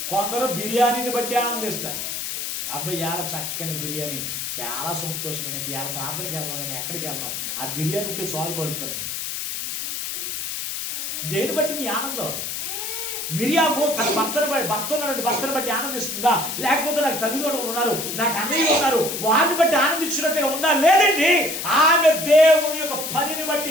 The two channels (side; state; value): left; noise; hiss, 4 dB below the sound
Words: కొందరు బిర్యానీని బట్టి ఆనందిస్తారు. అబ్బాయి ఇవాళ చక్కని బిర్యానీ, చాలా సంతోషమైన ఇవాళ ప్రార్థనకి వెళ్దాం, నేను ఎక్కడికి వెళ్ళను, ఆ బిర్యానీ ఉంటే సాల్వ్ కలుపుకను. దేని బట్టి నీ ఆనందం? మిరియాము తన భర్తను బట్టి ఆనందిస్తుందా? లేకపోతే నాకు తల్లిదండ్రులు ఉన్నారు, నాకు అన్నయ్య ఉన్నారు, వారిని బట్టి ఆనందించినట్టుగా ఉందా? లేదండి. ఆమె దేవుని యొక్క పనిని